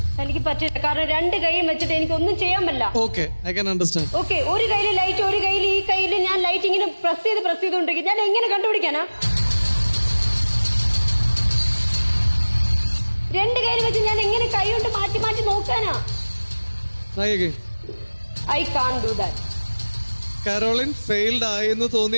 എനിക്ക് പറ്റില്ല. കാരണം 2 കൈയും വെച്ചിട്ട് എനിക്ക് ഒന്നും ചെയ്യാൻ പറ്റില്ല. Okay, I can understand. Okay, ഒരു കയ്യിൽ ലൈറ്റ്, ഒരു കയ്യിൽ ഈ കയ്യിൽ ഞാൻ ലൈറ്റ് ഇങ്ങനെ പ്രസ് ചെയ്തുകൊണ്ടിരിക്കും. ഞാൻ എങ്ങനെ കണ്ടുപിടിക്കാനാ? 2 കയ്യിൽ വെച്ച് ഞാൻ എങ്ങനെ കൈ കൊണ്ട് മാറ്റി മാറ്റി നോക്കാനാ? Try again. I can't do that. Caroline failed ആയെന്ന്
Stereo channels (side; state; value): both; inverted; correlation -1.00